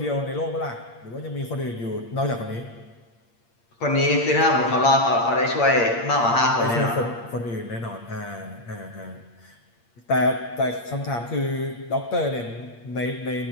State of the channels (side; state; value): right; late; 8.6 ms